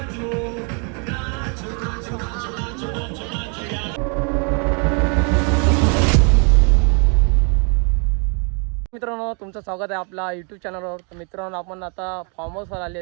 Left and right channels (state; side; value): quieter; left; 36.7 dB